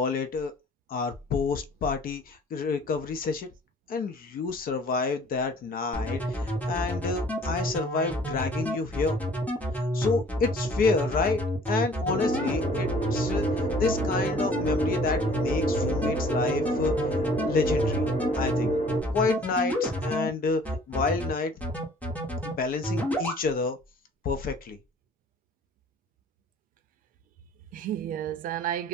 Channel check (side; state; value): both; normal; correlation 0.53